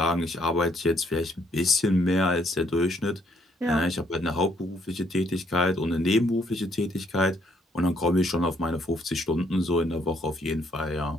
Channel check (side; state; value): both; normal; correlation 0.69